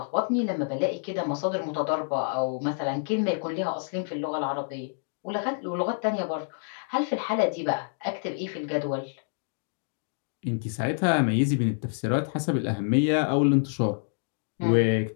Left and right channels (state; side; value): silent; right; digital silence